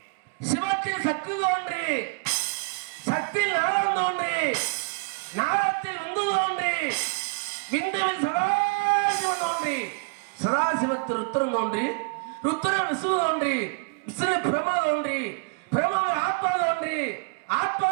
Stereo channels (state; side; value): quieter; left; 33.3 dB